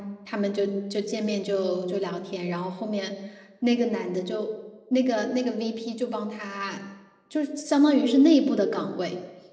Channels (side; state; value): both; identical; correlation 1.00